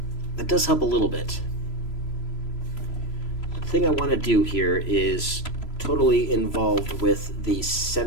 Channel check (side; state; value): right; late; 3.0 ms